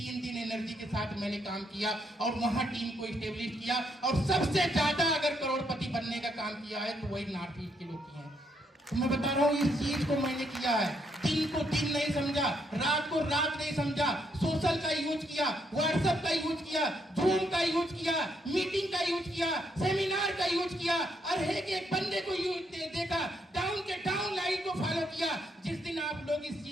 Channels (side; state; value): both; normal; correlation 0.75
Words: दिन एनर्जी के साथ मैंने काम किया और वहाँ टीम को स्टेब्लिश किया। और सबसे ज्यादा अगर करोड़पति बनने का काम किया है तो वही नॉर्थ ईस्ट के लोग किए हैं। तो मैं बता रहा हूँ इस चीज को मैंने किया है। दिन को दिन नहीं समझा, रात को रात नहीं समझा, सोशल का यूज किया, व्हाट्सएप का यूज किया, जूम का यूज किया, मीटिंग का यूज किया, सेमिनार का यूज किया, और एक बंदे को यूज देखा, डाउन के डाउन लाइन को फॉलो किया। जिस दिन आप लोग इस